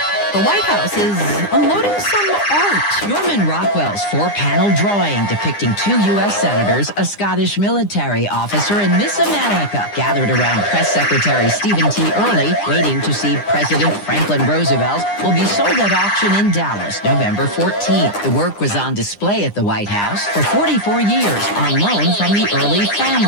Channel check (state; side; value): late; right; 9.9 ms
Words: The White House is unloading some art. Norman Rockwell's four-panel drawing depicting two U.S. senators, a Scottish military officer, and Miss America gathered around Press Secretary Stephen T. Early, waiting to see President Franklin Roosevelt, will be sold at auction in Dallas November 14th. The work was on display at the White House for 44 years on loan from the Early